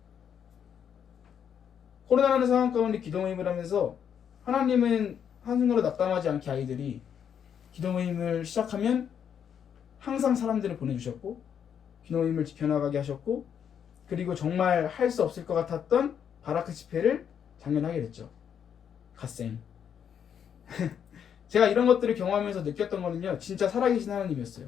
코로나라는 상황 가운데 기도 모임을 하면서 하나님은 한순간도 낙담하지 않게 아이들이 기도 모임을 시작하면 항상 사람들을 보내주셨고 기도 모임을 지켜나가게 하셨고 그리고 정말 할 수 없을 것 같았던 바라크 집회를 작년에 하게 됐죠. 갓생 제가 이런 것들을 경험하면서 느꼈던 거는요 진짜 살아계신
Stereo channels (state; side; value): quieter; right; 8.3 dB